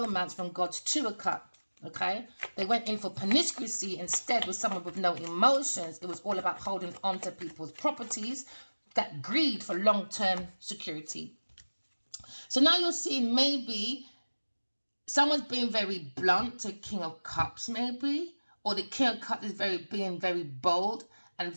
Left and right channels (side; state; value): both; inverted; correlation -1.00